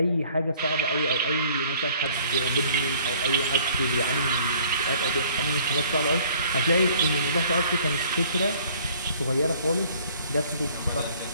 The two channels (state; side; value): inverted; both; correlation -0.56